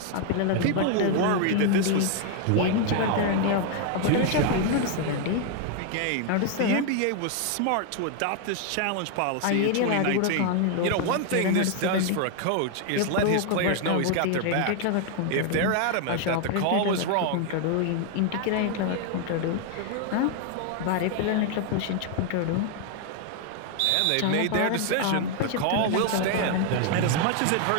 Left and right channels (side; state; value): both; different; correlation 0.00